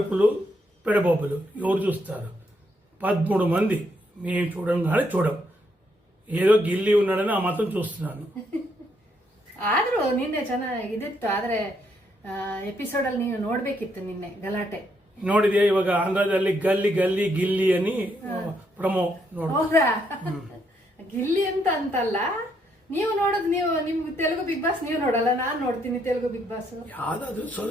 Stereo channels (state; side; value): normal; both; correlation 0.75